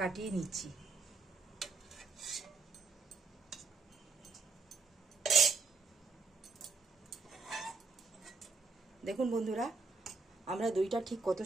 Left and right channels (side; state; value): left; quieter; 4.3 dB